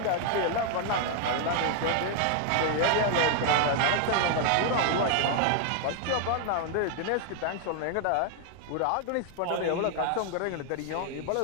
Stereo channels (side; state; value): both; different; correlation 0.00